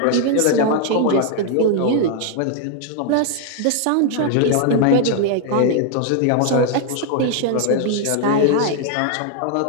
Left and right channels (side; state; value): both; different; correlation 0.00